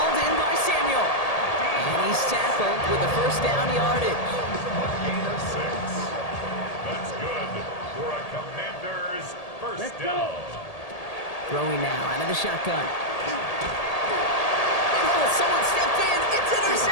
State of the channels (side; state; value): right; late; 1.8 ms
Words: in by Samuel. And he's tackled with the 1st down yardage. Gain of 6. That's good for a Commander's 1st down. Throwing now out of the shotgun. Oh, someone stepped in. It's